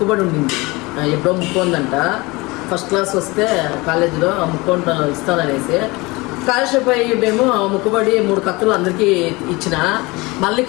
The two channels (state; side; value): quieter; right; 23.8 dB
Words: ఉండింది. ఎప్పుడో ముక్కుందంట. ఫస్ట్ క్లాస్ వస్తే కాలేజీలో ముక్కుంట ఇస్తాననేసి కాళహస్తి పోయి మేము ముక్కుబడి 3 కత్తులు అందరికీ ఇచ్చిన. మళ్ళీ